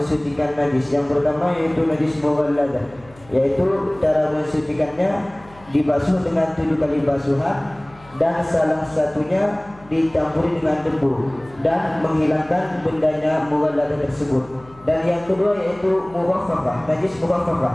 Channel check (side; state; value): left; noise; hum, 24 dB below the sound